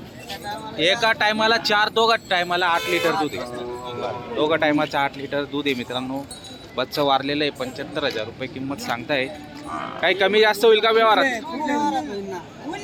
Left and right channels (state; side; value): identical; both; correlation 1.00